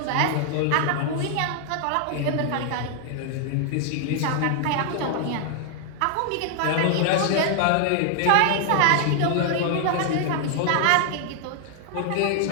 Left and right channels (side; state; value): both; different; correlation 0.00